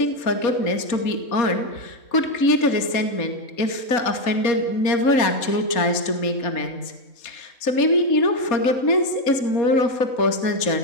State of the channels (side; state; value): right; late; 4.2 ms